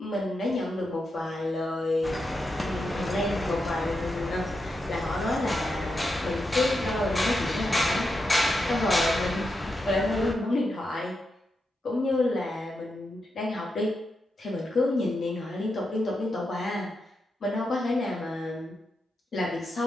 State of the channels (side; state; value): both; normal; correlation 0.86